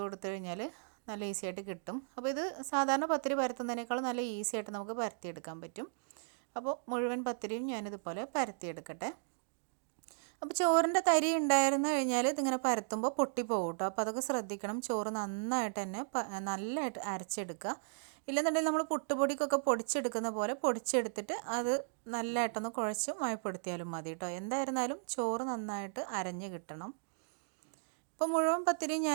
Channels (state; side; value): silent; left; digital silence